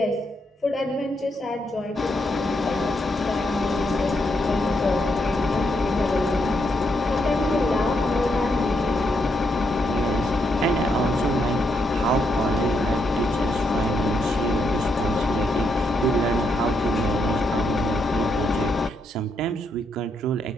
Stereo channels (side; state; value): both; normal; correlation 0.79